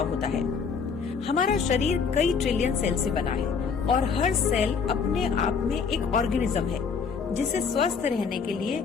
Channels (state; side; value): quieter; right; 5.8 dB